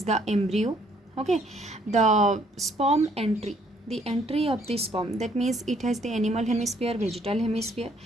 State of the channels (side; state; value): both; normal; correlation 0.65